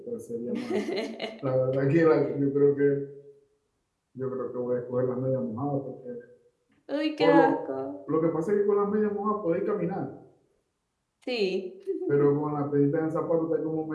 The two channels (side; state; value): both; identical; correlation 1.00